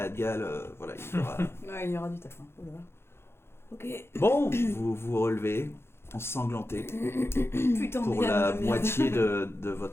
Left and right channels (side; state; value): right; late; 0.12 ms